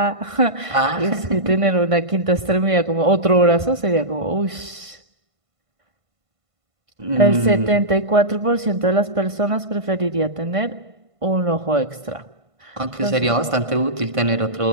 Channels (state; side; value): late; left; 1.5 ms